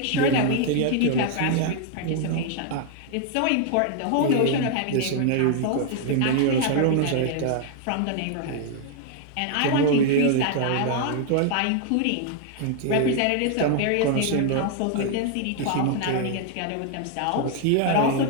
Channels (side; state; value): both; different; correlation 0.00